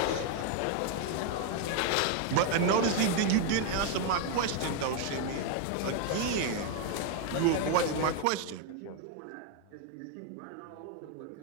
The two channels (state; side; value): different; both; correlation 0.01